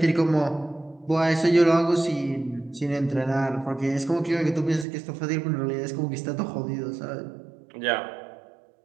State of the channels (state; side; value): drops out; left; at 4.9 s